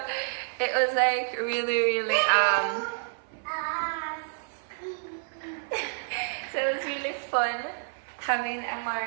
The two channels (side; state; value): left; silent; 56 dB below the other